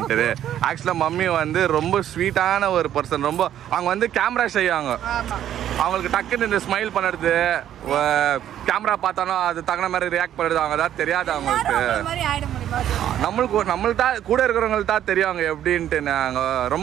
ஆக்சுவலாக மம்மி வந்து ரொம்ப ஸ்வீட்டான ஒரு பர்சன். ரொம்ப அவங்க வந்து கேமரா செய்வாங்க. அவங்களுக்கு டக்குன்னு இந்த ஸ்மைல் பண்ணுறது, கேமரா பார்த்தாலும் அது தகுந்த மாதிரி ரியாக்ட் பண்ணுறது அவங்க தான் தெரியாது அவங்களுக்கு. நம்மளுக்கு தான் கூட இருக்கிறவங்களுக்கு தான் தெரியும் அவங்க எப்படின்ட்டு. நாங்கள்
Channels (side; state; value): left; quieter; 11.0 dB